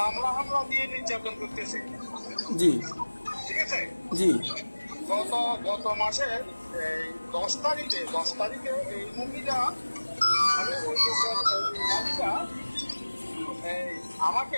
জি ঠিক আছে, জি গত মাসের 10 তারিখে এই মহিলা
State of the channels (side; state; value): both; inverted; correlation -1.00